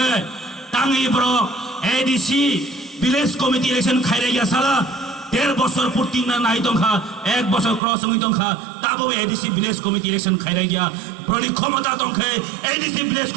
টাঙ্গি ব্রক এডিসি ভিলেজ কমিটি ইলেকশন খাইরে গিয়া সালা 1.5 বছর পূর্তি না নাই দংখা 1 বছর ক্রস হই দংখা তাবো এডিসি ভিলেজ কমিটি ইলেকশন খাইরে গিয়া ব্রলি ক্ষমতা দংখে এডিসি ভিলেজ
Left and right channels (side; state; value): left; drops out; at 7.8 s